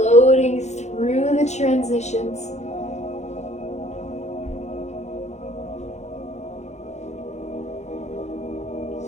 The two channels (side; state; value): right; late; 0.33 ms